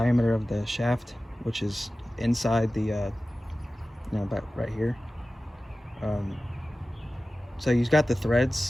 of the shaft, which is inside the, you know, about right here. So you've got the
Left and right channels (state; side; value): normal; both; correlation 0.96